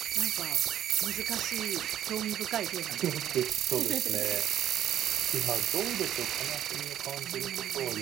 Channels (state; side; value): quieter; left; 11.1 dB